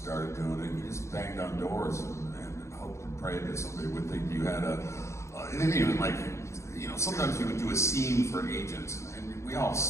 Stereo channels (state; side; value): late; right; 0.14 ms